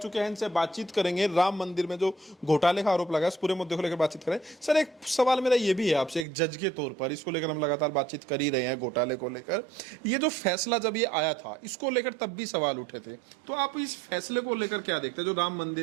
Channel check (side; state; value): left; drops out; at 6.2 s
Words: हैं। इनसे बातचीत करेंगे राम मंदिर में जो घोटाले का आरोप लगा है उस पूरे मुद्दे को लेकर बातचीत करें। सर एक सवाल मेरा ये भी है आपसे, एक जज के तौर पर इसको लेकर हम लगातार बातचीत कर ही रहे हैं घोटाले को लेकर। ये जो फैसला जब ये आया था इसको लेकर तब भी सवाल उठे थे, तो आप इस फैसले को लेकर क्या देखते हैं? जो राम